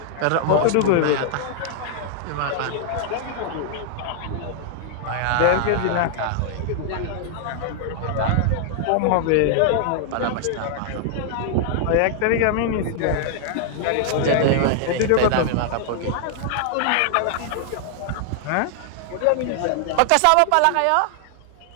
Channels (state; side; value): different; both; correlation 0.00